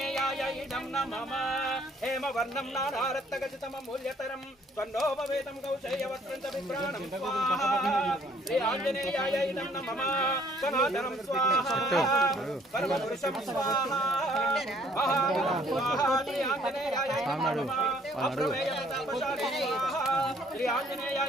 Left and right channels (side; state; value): both; normal; correlation 0.61